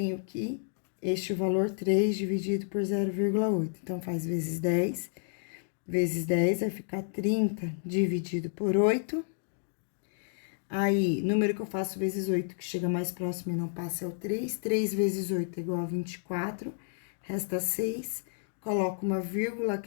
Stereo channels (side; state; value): right; silent; digital silence